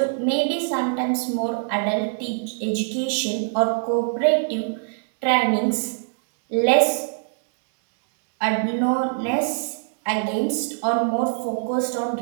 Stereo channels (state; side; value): silent; left; digital silence